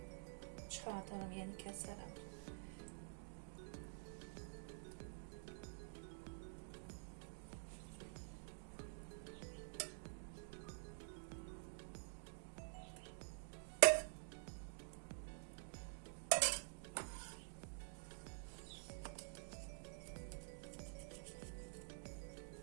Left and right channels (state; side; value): silent; left; digital silence